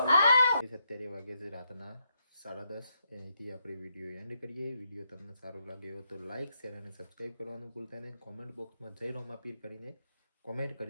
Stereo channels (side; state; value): both; inverted; correlation -0.79